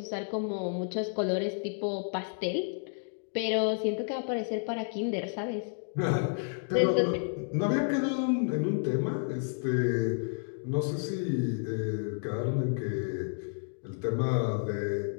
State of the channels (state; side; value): silent; right; digital silence